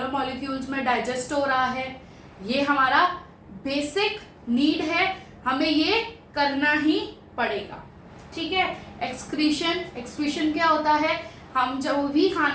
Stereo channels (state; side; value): identical; both; correlation 1.00